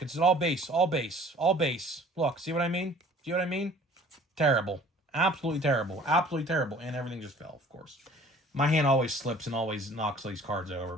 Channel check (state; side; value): normal; both; correlation 0.51